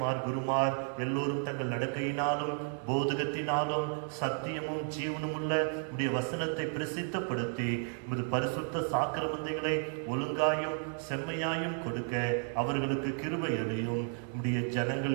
குருமார் எல்லோரும் தங்கள் நடக்கையினாலும் போதகத்தினாலும் சத்தியமும் ஜீவனும் உள்ள உடைய வசனத்தை பிரசித்தப்படுத்தி உமது பரிசுத்த சாக்கிரமந்தைகளை ஒழுங்காயும் செம்மையாயும் கொடுக்க அவர்களுக்கு கிருபை அளியும். உடைய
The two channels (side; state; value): left; silent; 56 dB below the other